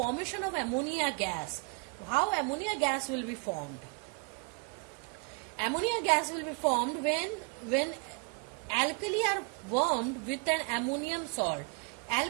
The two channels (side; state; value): left; quieter; 33.7 dB